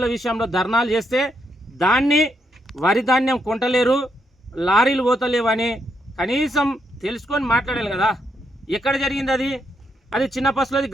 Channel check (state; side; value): normal; both; correlation 0.78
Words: విషయంలో ధర్నాలు చేస్తే దాన్ని వరి ధాన్యం కొంటలేరు, లారీలు పోతలేవు అని కనీసం తెలుసుకొని మాట్లాడాలి కదా. ఎక్కడ జరిగింది అది చిన్నపసులోది